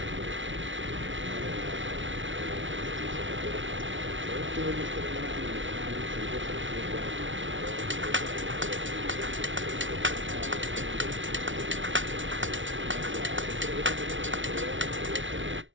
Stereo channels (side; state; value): left; late; 0.56 ms